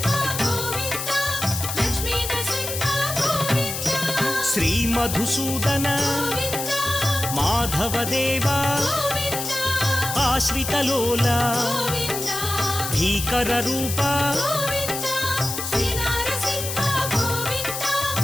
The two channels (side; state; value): left; noise; hiss, 5 dB below the sound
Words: श्री मधुसूदन माधवदेवा आश्रितलोला भीकर रूपा